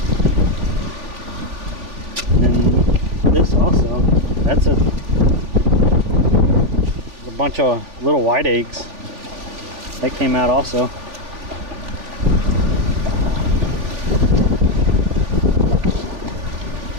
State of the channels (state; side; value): late; left; 3.4 ms